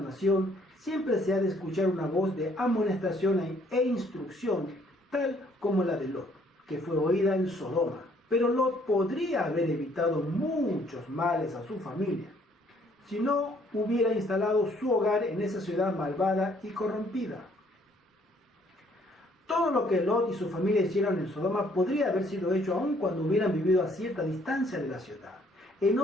siempre se ha de escuchar una voz de amonestación e instrucción, tal como la de Lot, que fue oída en Sodoma. Pero Lot podría haber evitado muchos males a su familia si no hubiera instalado su hogar en esa ciudad malvada y corrompida. Todo lo que Lot y su familia hicieron en Sodoma podría haber sido hecho aun cuando hubieran vivido a cierta distancia de la ciudad.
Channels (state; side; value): normal; both; correlation 0.63